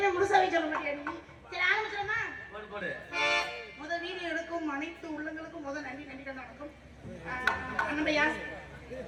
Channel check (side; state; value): both; identical; correlation 1.00